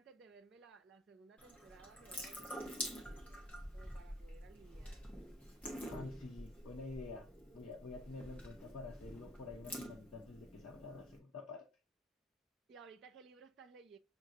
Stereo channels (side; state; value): both; normal; correlation 0.60